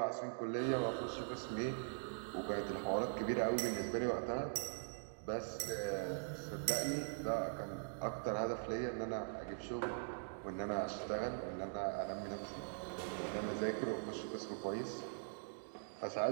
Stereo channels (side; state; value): left; silent; digital silence